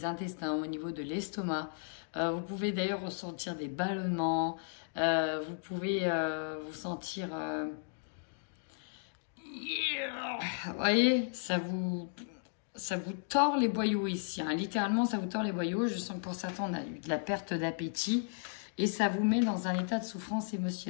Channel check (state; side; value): silent; right; digital silence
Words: intestins, au niveau de l'estomac. Vous pouvez d'ailleurs ressentir des ballonnements. Vous pouvez vous sentir... Vous voyez, ça vous tord les boyaux ici. Hein. Littéralement, ça vous tord les boyaux. Je sens que pour certains, on a eu de la perte d'appétit. Et ça vous met dans un état de souffrance